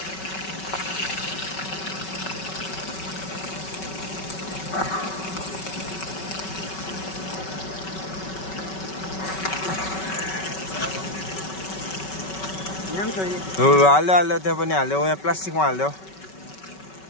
हाल्छ हाल्यो त्यहाँ पनि हाल्यो यहाँ प्लास्टिकमा हाल्यो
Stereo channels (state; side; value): late; right; 5.3 ms